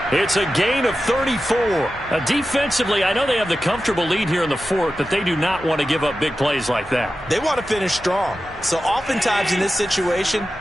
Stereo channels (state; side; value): normal; both; correlation 0.93